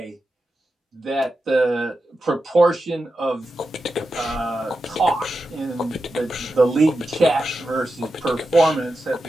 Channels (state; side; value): normal; both; correlation 0.90